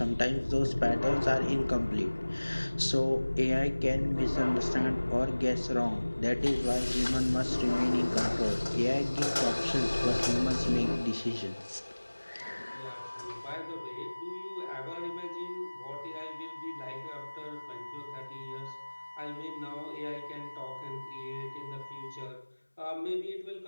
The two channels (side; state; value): both; inverted; correlation -1.00